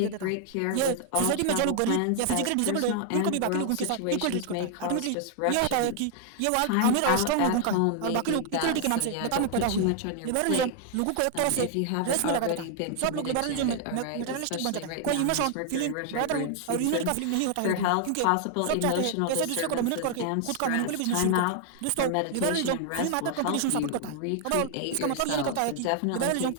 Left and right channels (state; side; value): different; both; correlation 0.00